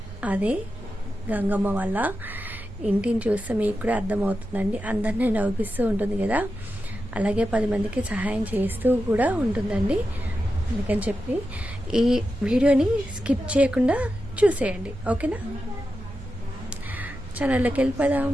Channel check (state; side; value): normal; both; correlation 0.90